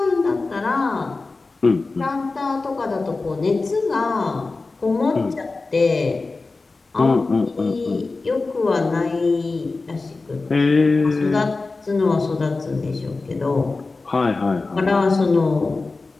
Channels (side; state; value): right; quieter; 3.7 dB